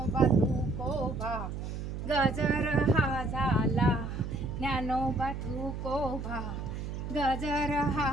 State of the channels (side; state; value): right; noise; hum, 6 dB below the sound